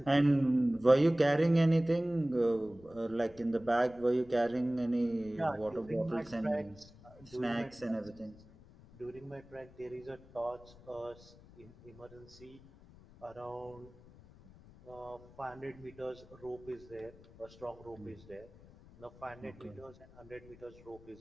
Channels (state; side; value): noise; left; rumble, 22 dB below the sound